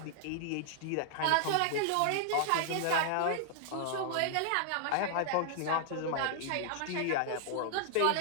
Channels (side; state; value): both; different; correlation -0.01